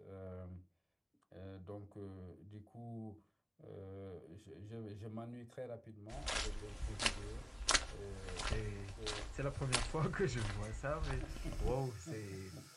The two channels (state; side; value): identical; both; correlation 1.00